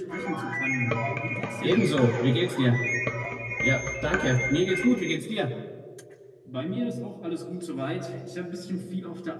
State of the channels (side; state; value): both; identical; correlation 1.00